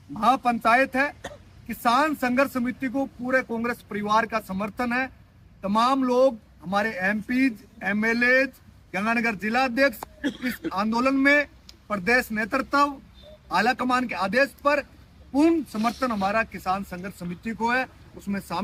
महापंचायत है, किसान संघर्ष समिति को पूरे कांग्रेस परिवार का समर्थन है। तमाम लोग, हमारे एमपीज, एमएलए, गंगानगर जिलाध्यक्ष इस आंदोलन में प्रदेश नेतृत्व आला कमान के आदेश पर पूर्ण समर्थन हमारा किसान संघर्ष समिति को है, उसमें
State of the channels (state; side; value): identical; both; correlation 1.00